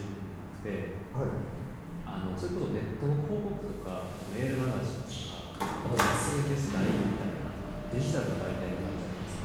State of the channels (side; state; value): both; identical; correlation 1.00